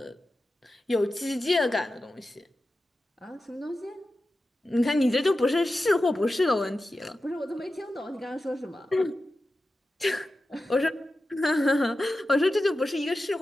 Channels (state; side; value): normal; both; correlation 0.93